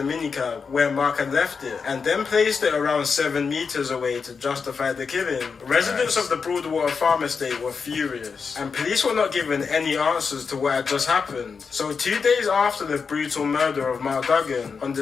minicab where Mark had left it and then placed it around 7 meters away to justify the killing. Residents of the Broadwater Farm Estate were furious, and police were not given any answers to what had just happened. So 2 days after the brutal murder of Mark Duggan, on the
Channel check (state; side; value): quieter; right; 5.5 dB